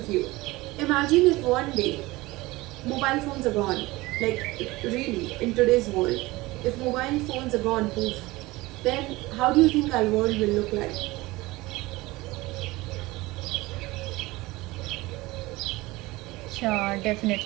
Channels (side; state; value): left; quieter; 20.5 dB